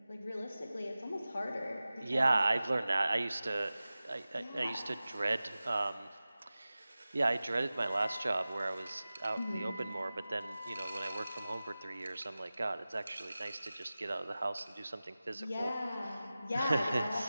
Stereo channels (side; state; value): both; inverted; correlation -0.96